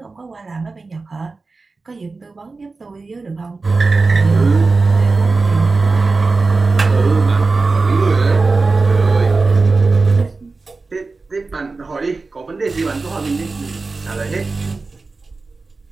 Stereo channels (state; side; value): quieter; left; 3.9 dB